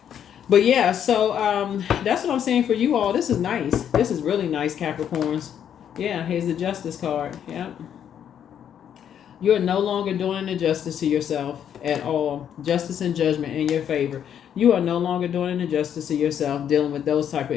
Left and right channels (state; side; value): quieter; right; 9.1 dB